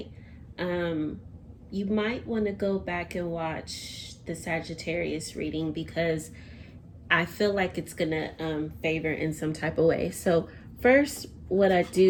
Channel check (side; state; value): both; identical; correlation 1.00